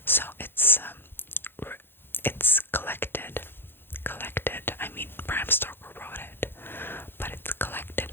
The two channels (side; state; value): right; late; 0.10 ms